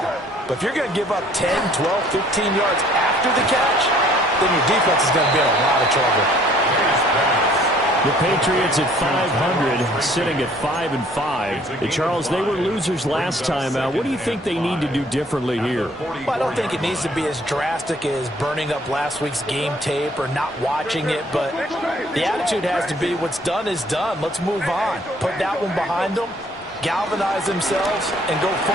But if you're going to give up 10, 12, 15 yards after the catch, then your defense is going to be in a lot of trouble. The Patriots at 500, sitting at 5-5. Charles, they were losers last time out. What do you think they need to do differently here? Well, I don't think it needs to be as drastic as burning up last week's game tape or not watching it, but the attitude has to be what's done is done. Let's move on. Put that one behind them, galvanize themselves, and go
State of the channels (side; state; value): both; normal; correlation 0.59